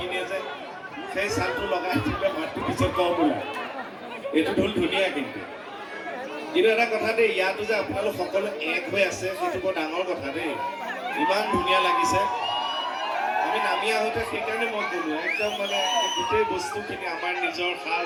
যায় সেই চালটো লগাই দিলে মাতটো পিছত কম ওলায় এইটো ঢোল ধুনীয়া কিন্তু এটা কথা দেই ইয়াতো যে আপোনালোক সকলো এক হৈ আছে সেইটো বৰ ডাঙৰ কথা দেই ইমান ধুনীয়া লাগিছে আমি নামি আহোঁতে সেইকাৰণে মই ক'লো একদম মানে গোটেই বস্তুখিনি আমাৰ নিজৰ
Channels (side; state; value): both; identical; correlation 1.00